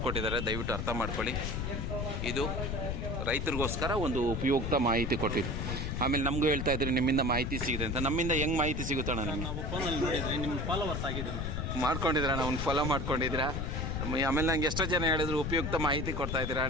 ದಯವಿಟ್ಟು ಅರ್ಥ ಮಾಡ್ಕೊಳ್ಳಿ. ಇದು ರೈತರಿಗೋಸ್ಕರ ಒಂದು ಉಪಯುಕ್ತ ಮಾಹಿತಿ ಕೊಟ್ಟಿದ್ದು. ಆಮೇಲೆ ನಮಗೂ ಹೇಳ್ತಾ ಇದ್ರಿ ನಿಮ್ಮಿಂದ ಮಾಹಿತಿ ಸಿಗಿದೆ ಅಂತ. ನಮ್ಮಿಂದ ಹೆಂಗೆ ಮಾಹಿತಿ ಸಿಗುತ್ತಣ್ಣ? ನಿಮಗೆ ಮಾಡ್ಕೊಂಡಿದ್ದೀರಾ, ಅವ್ನು ಫಾಲೋ ಮಾಡ್ಕೊಂಡಿದ್ದೀರಾ. ಆಮೇಲೆ ನಂಗೆ ಎಷ್ಟೋ ಜನ ಹೇಳಿದ್ರು ಉಪಯುಕ್ತ ಮಾಹಿತಿ ಕೊಡ್ತಾ ಇದ್ದೀರಾ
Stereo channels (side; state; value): left; noise; rumble, 2 dB below the sound